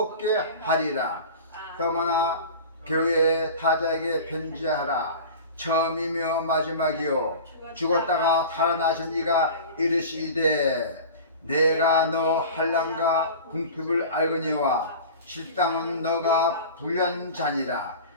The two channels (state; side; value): inverted; both; correlation -0.36